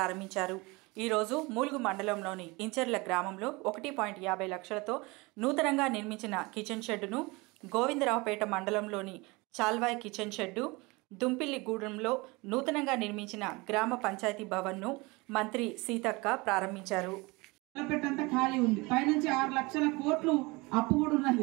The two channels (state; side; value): quieter; left; 24.8 dB